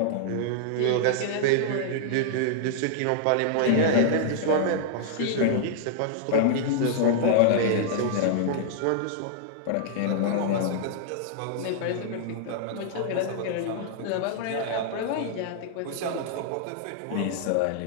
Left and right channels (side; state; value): both; different; correlation -0.01